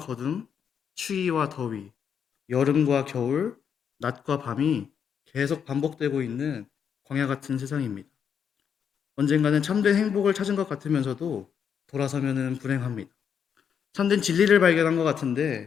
추위와 더위, 여름과 겨울, 낮과 밤이 계속 반복되고 있는 광야 같은 세상입니다. 언젠가는 참된 행복을 찾은 것 같으면서도 돌아서면은 불행합니다. 참된 진리를 발견한 것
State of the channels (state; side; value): quieter; right; 7.6 dB